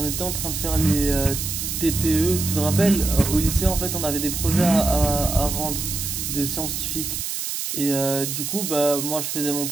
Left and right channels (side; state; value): right; noise; hiss, 4 dB below the sound